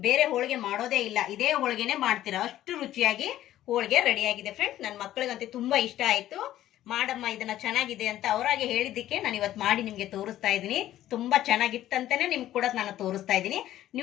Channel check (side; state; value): right; quieter; 13.3 dB